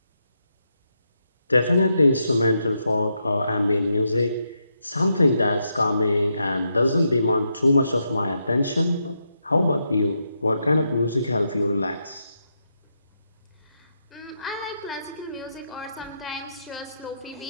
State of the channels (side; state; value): both; inverted; correlation -0.82